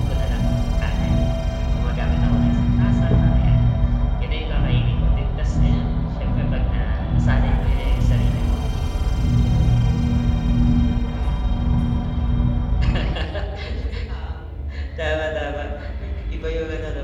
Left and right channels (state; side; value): identical; both; correlation 1.00